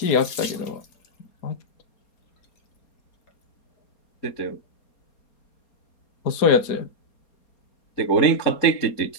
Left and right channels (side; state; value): right; late; 4.3 ms